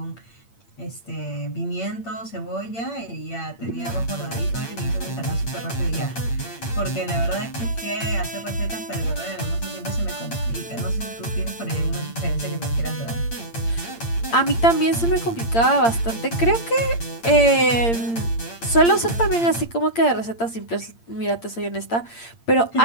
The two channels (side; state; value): right; late; 8.7 ms